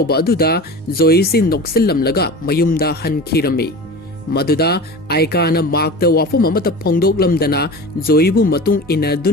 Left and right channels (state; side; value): normal; both; correlation 0.33